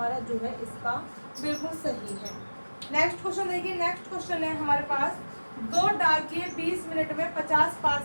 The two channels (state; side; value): inverted; both; correlation -1.00